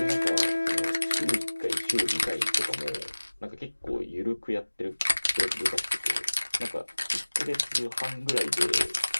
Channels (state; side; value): inverted; both; correlation -1.00